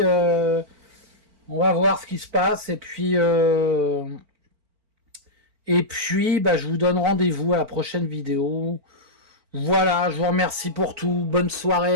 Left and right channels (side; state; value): left; late; 4.4 ms